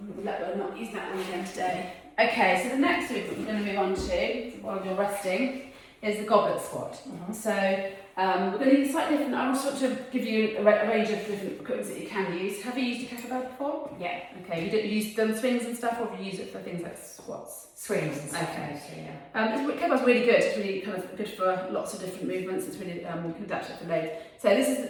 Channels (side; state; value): both; identical; correlation 1.00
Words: not use that one again today. Okay, so the next movement we're going to move on to while you're resting is the goblet squat. So we're going to use slightly different. I want to give you a range of different equipment that you can use. Have you used a kettlebell before? Yeah. Okay, you've done swings and stuff, or have you used it for things like squats? Swings and stuff. Okay. Yeah. Kettlebell's really good. It's really kind of good for lots of different movements. It's really you can adapt it for load. So this is